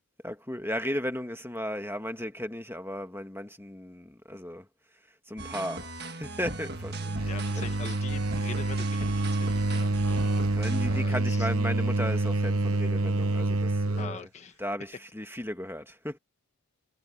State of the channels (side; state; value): both; normal; correlation 0.71